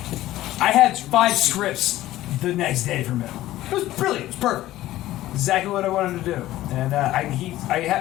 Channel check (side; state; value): right; quieter; 15.3 dB